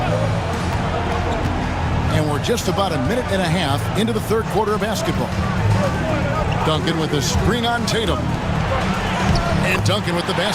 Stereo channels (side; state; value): both; identical; correlation 1.00